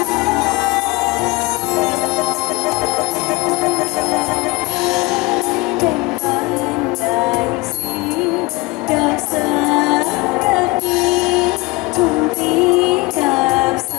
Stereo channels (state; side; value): quieter; right; 23.2 dB